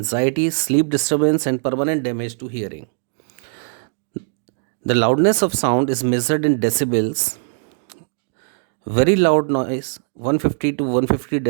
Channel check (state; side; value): silent; left; digital silence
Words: sleep disturbance, and permanent damage to hearing. The loudness of sound is measured in decibels. Very loud noise, 150 to 150